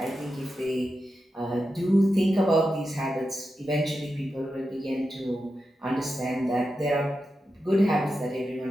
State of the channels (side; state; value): both; normal; correlation 0.89